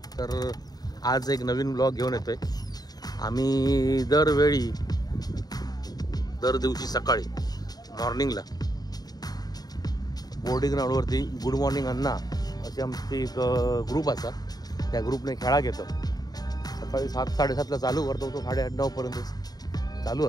तर आज एक नवीन ब्लॉग घेऊन येतोय. आम्ही दर दिवशी सकाळी मॉर्निंगला बोर्डिंग ग्राउंडवरती गुड मॉर्निंग अण्णा अशी आमची एक ग्रुप असा, त्या ग्रुपने खेळा घेतो. सकाळी 7-7:30ला चालू करतो, तो 8:30-9पर्यंत चालू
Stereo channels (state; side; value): late; right; 0.19 ms